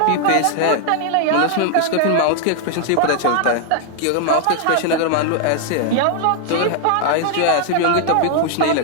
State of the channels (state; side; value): different; both; correlation 0.00